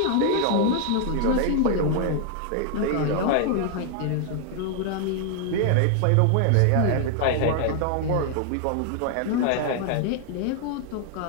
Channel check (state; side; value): different; both; correlation 0.00